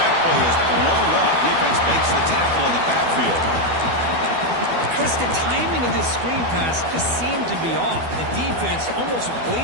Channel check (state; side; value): late; left; 12 ms